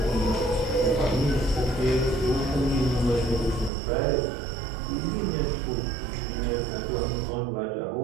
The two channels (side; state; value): left; drops out; at 3.7 s